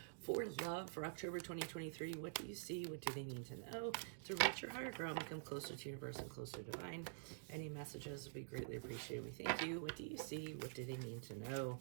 For love for October 2023, what do you see? What do they need to know? To reach your higher ground, become closer to universe and closer to divine. Any messages would be greatly appreciated. We thank you. What do you see? What do they need to know?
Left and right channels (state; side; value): silent; left; digital silence